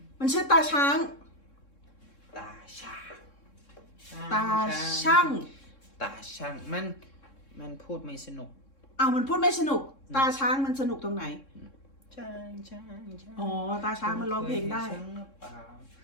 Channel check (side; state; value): right; late; 3.7 ms